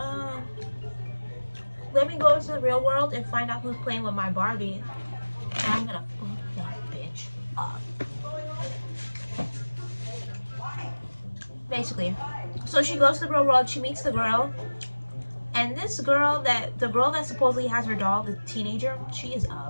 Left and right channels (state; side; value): inverted; both; correlation -1.00